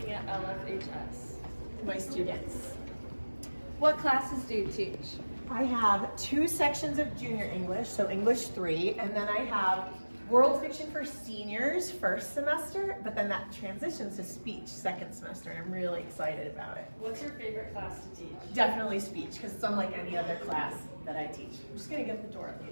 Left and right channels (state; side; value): inverted; both; correlation -1.00